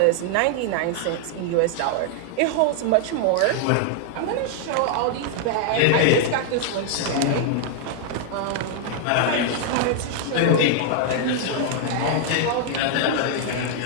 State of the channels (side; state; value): both; different; correlation 0.00